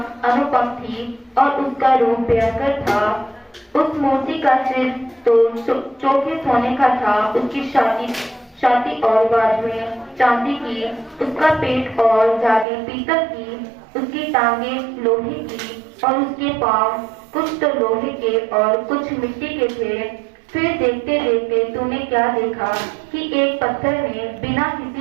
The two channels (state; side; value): drops out; left; at 12.7 s